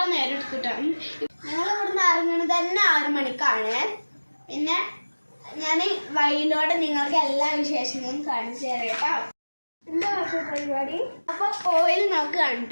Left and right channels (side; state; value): both; inverted; correlation -1.00